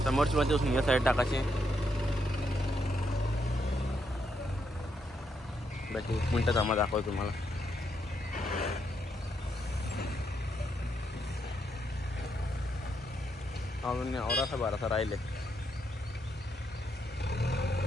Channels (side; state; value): both; normal; correlation 0.78